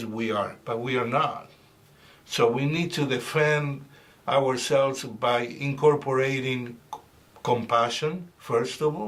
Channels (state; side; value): identical; both; correlation 1.00